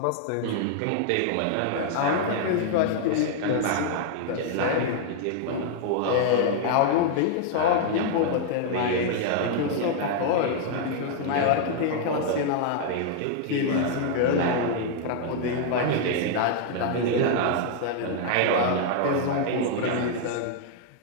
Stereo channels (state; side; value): different; both; correlation -0.01